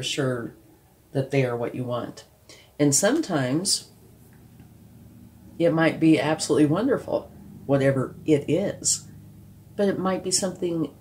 sure that they are what you want. And sometimes it might be absolutely wonderful, whatever it is. But it might be something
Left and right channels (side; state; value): both; identical; correlation 1.00